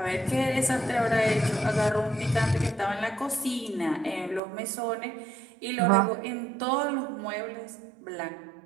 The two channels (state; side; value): drops out; left; at 4.4 s